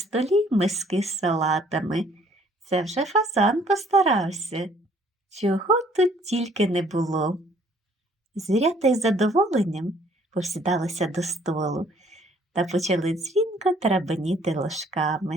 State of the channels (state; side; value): normal; both; correlation 0.60